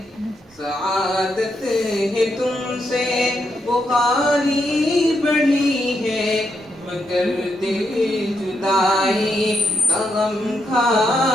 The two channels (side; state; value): both; normal; correlation 0.81